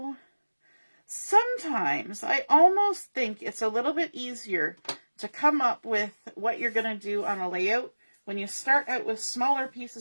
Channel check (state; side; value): inverted; both; correlation -1.00